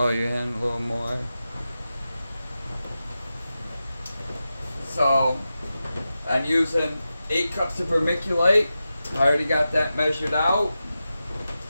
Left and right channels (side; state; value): both; inverted; correlation -0.92